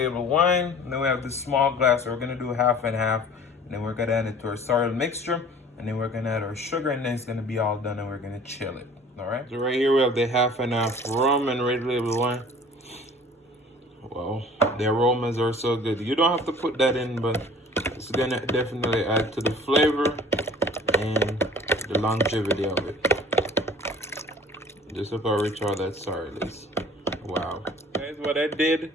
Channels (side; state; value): both; normal; correlation 0.47